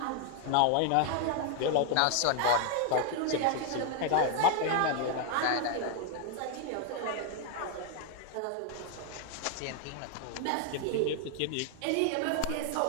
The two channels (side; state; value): both; different; correlation 0.01